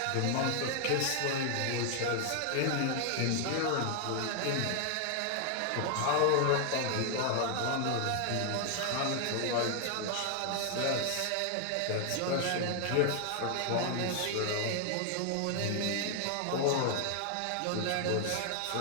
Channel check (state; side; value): different; both; correlation 0.00